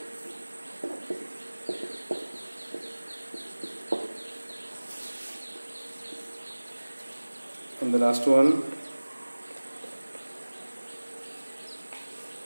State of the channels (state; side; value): inverted; both; correlation -1.00